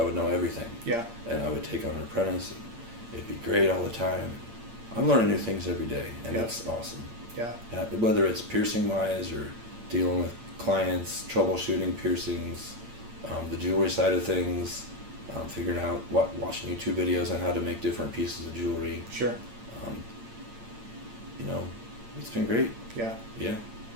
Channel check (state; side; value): late; left; 8.8 ms